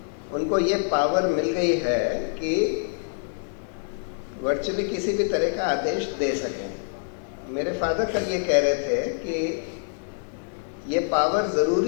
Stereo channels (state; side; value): silent; right; 61 dB below the other